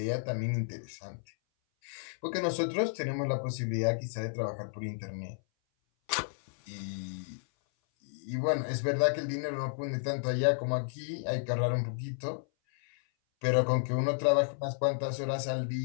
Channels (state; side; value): silent; right; 56 dB below the other